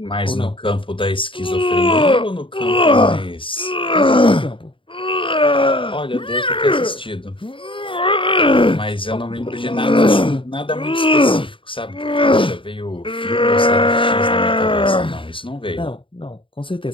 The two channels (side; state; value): right; late; 0.25 ms